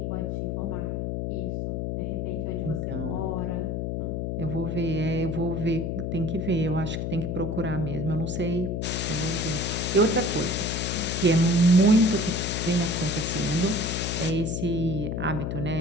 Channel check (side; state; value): left; noise; hum, 1 dB below the sound